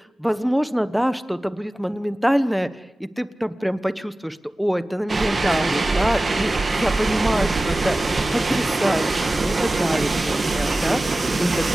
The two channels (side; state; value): both; normal; correlation 0.96